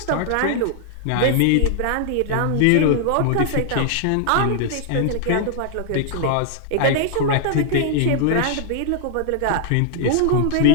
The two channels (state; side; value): different; both; correlation -0.01